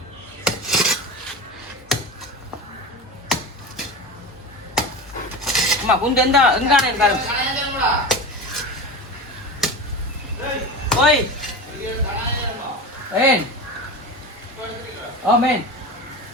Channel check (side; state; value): both; normal; correlation 0.27